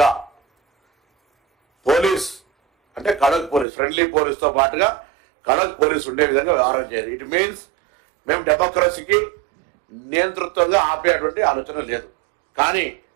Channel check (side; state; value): left; drops out; at 3.7 s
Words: పోలీస్ అంటే కడక్ పోలీస్, ఫ్రెండ్లీ పోలీస్తో పాటుగా కడక్ పోలీస్ ఉండే విధంగా వ్యవహారం చేయాలి. ఇట్ మీన్స్ మేము డెమోక్రసీకి నియంతృత్వంగా ఆపేటువంటి ఆలోచన లేదు. కానీ